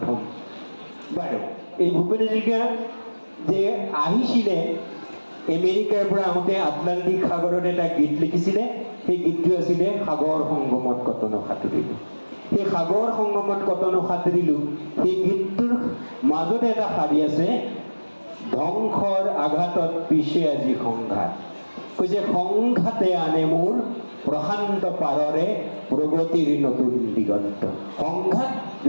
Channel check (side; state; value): both; inverted; correlation -1.00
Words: হ'ম বাৰু এই ভূপেন হাজৰিকা যে আহিছিলে আমেৰিকাৰ পৰা আহোঁতে আটলাণ্টিক সাগৰত এটা গীত লিখিছিলে সেই গীতটো আছিলে সাগৰ সংগমত কতনো সাঁতুৰিলো সেই সাগৰ সংগমত কতনো সাঁতুৰিলো সেই গীতটোৰ মাজতে এটা শাৰী আছে ধ্বংসৰ আঘাতত পিছে আজি সংঘাত কৈছে সংঘাতে আনে মোৰ প্ৰশান্ত পাৰৰে প্ৰগতিৰ নতুন দিগন্ত সংঘাত